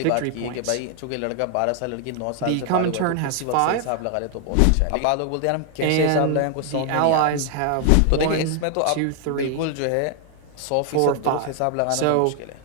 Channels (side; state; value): both; different; correlation 0.00